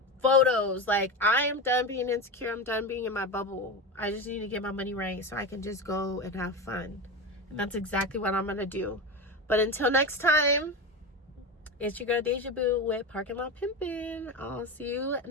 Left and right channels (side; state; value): both; normal; correlation 0.20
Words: photos. Like, I am done being insecure. I'm done being in my bubble. I just need to get my money right so I can just go and have fun. And that's exactly what I'm gonna do. But until next time, it's your girl Deja Boo with Parking Lot Pimpin'. I'll see you